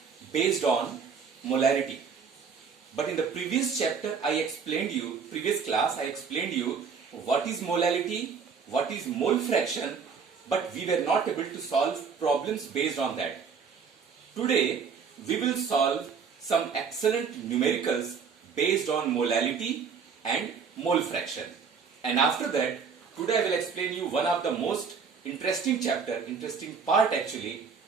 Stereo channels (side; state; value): left; quieter; 6.0 dB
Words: based on molarity. But in the previous chapter, previous class, I explained you what is molality, what is mole fraction, but we were not able to solve problems based on that. Today, we will solve some excellent numericals based on molality and mole fraction. And after that, today I will explain you one of the most interesting part actually,